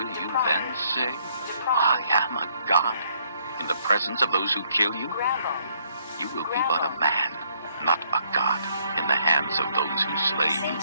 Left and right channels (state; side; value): inverted; both; correlation -0.68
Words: you then say, I am a god, in the presence of those who kill you? You will be but a man, not a god, in the hands of those who slay you.